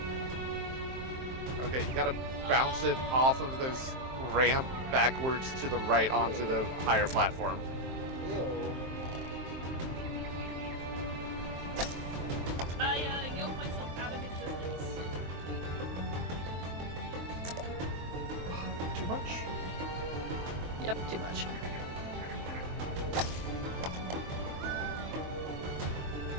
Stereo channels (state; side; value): late; left; 23 ms